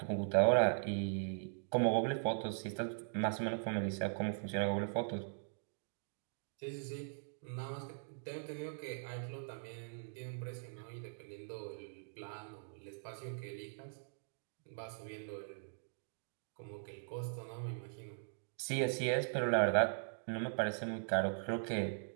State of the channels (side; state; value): left; silent; digital silence